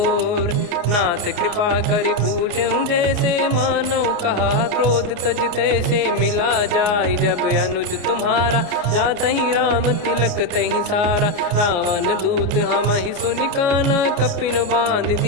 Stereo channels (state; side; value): late; left; 29 ms